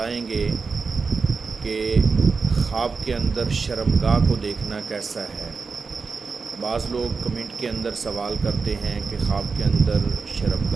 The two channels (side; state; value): left; quieter; 4.8 dB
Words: گے کہ خواب کے اندر شرمگاہ کو دیکھنا کیسا ہے۔ بعض لوگ کمنٹ کے اندر سوال کرتے ہیں کہ خواب کے اندر